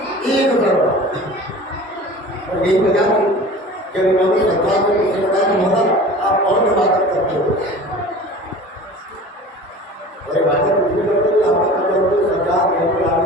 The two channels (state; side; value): normal; both; correlation 0.40